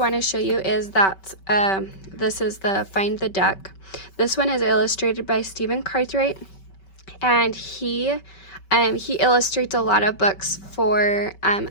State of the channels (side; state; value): right; late; 5.2 ms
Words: to show you is this is the Find the Duck. This one is illustrated by Stephen Cartwright, and he illustrates a lot of books for